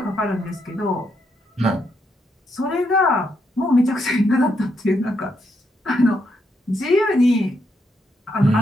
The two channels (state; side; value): normal; both; correlation 0.79